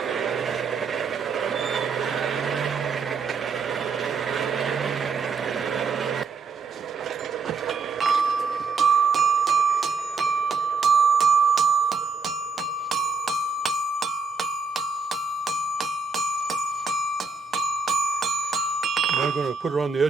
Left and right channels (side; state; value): left; quieter; 4.6 dB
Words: Now I'm going to put it on the